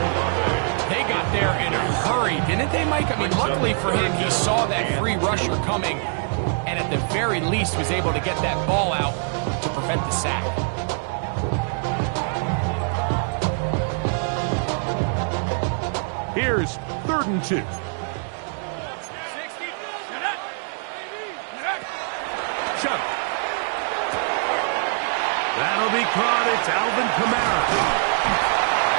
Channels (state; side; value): silent; left; 60 dB below the other